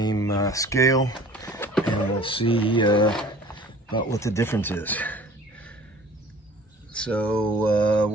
scale, and we'll see about what the difference is. So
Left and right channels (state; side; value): normal; both; correlation 0.48